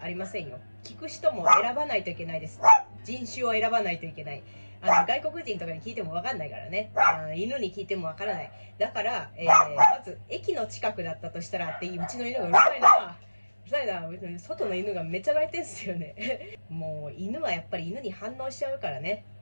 ありませんよ。聞く人も選ばないといけないです。人種を選ばないといけない。外国人とかに聞いても分かんないからね。犬に聞いても分からない。だから、まず駅の近くだったとしたらっていう、うちの犬がうるさいな。うるさいな。外の犬がめっちゃ鳴いてんすよね。もう犬はやっぱり犬に反応しちゃうからね。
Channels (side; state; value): both; inverted; correlation -1.00